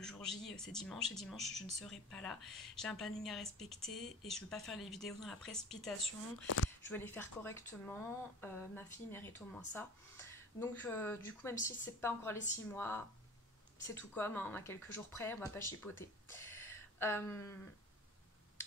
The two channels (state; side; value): normal; both; correlation 0.41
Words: jour J c'est dimanche et dimanche je ne serai pas là. J'ai un planning à respecter et je ne veux pas faire les vidéos dans la précipitation. Je veux les faire correctement, ma fille mérite au moins ça. Donc du coup même si c'est pas encore les 6 mois, c'est tout comme, hein, on a quelques jours près, on va pas chipoter.